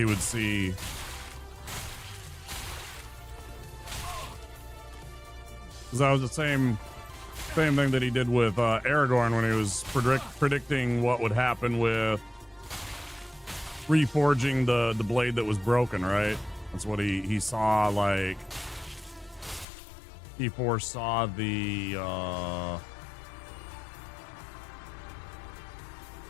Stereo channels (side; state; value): right; drops out; at 19.7 s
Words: would see. Because that was the same thing that he did with Aragorn when he was predicting what would happen with reforging the blade that was broken, right? That's what he saw, like he foresaw the